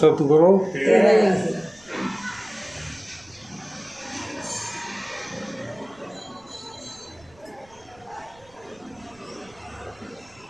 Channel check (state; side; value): noise; right; rumble, 29 dB below the sound